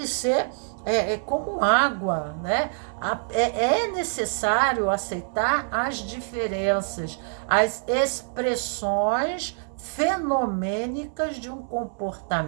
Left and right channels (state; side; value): silent; left; 60 dB below the other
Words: ser como água, né? É necessário aceitar as diferenças, as expressões fenomênicas de um